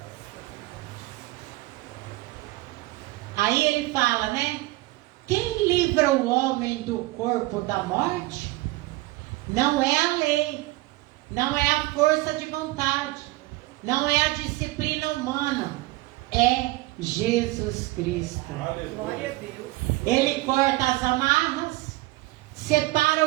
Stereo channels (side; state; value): left; quieter; 20.0 dB